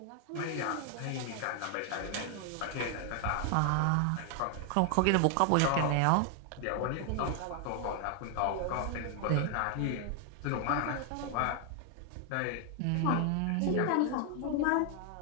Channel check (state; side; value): different; both; correlation 0.01